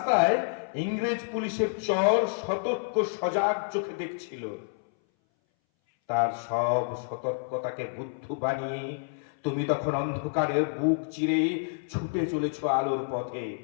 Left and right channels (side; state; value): right; silent; 59 dB below the other